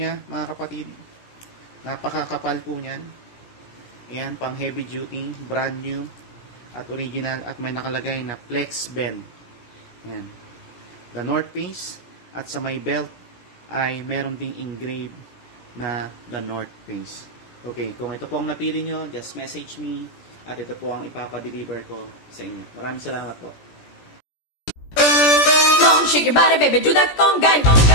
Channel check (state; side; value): late; right; 17 ms